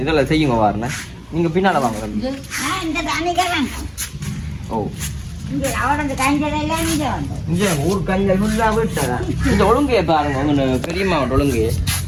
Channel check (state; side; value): identical; both; correlation 1.00